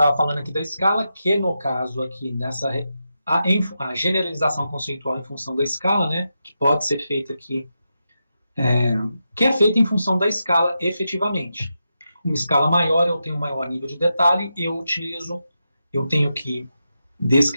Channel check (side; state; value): both; inverted; correlation -0.87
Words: falando aqui da escala, que no caso aqui, a generalização conceitual em função da escala, né, que pode ser feita aqui, que é feita em função da escala efetivamente. Uma escala maior, eu tenho um maior nível de detalhe, eu tenho que